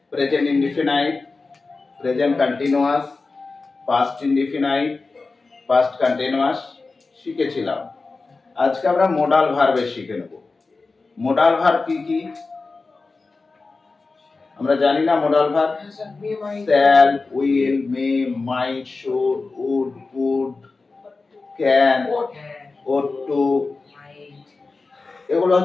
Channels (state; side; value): quieter; right; 3.9 dB